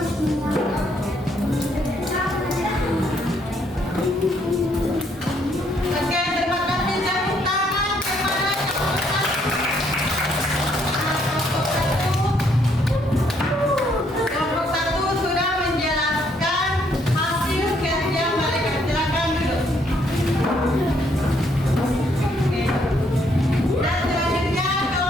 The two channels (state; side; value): normal; both; correlation 0.70